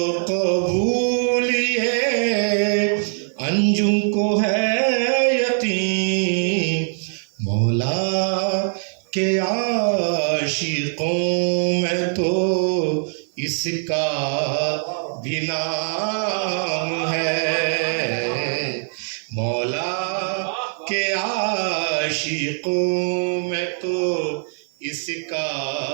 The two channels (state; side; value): silent; left; 63 dB below the other